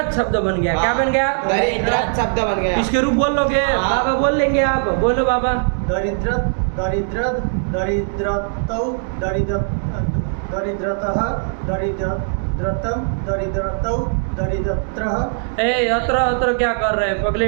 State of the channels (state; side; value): silent; left; digital silence